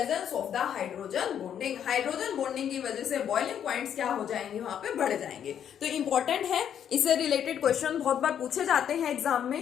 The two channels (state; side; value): quieter; right; 9.1 dB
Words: of the hydrogen bonding. Hydrogen bonding की वजह से बॉइलिंग पॉइंट्स क्या हो जाएंगे? वहां पे बढ़ जाएंगे। तो इंपॉर्टेंट है, इससे रिलेटेड क्वेश्चन बहुत बार पूछे जाते हैं एग्जाम